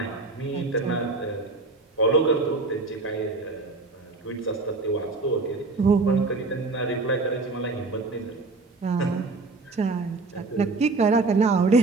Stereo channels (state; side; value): quieter; left; 3.7 dB